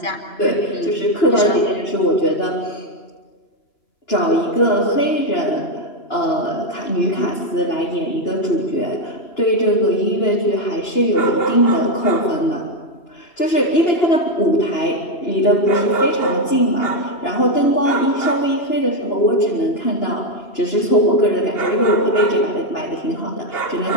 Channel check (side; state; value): right; late; 2.9 ms